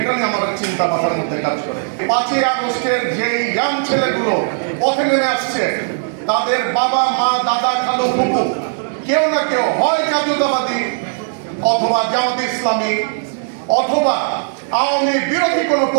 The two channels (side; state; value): left; silent; digital silence